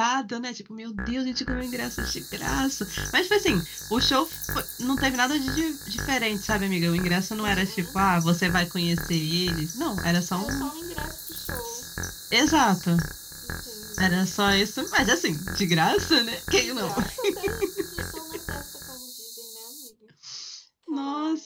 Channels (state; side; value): identical; both; correlation 1.00